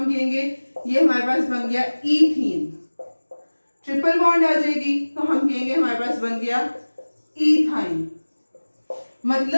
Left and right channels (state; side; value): inverted; both; correlation -1.00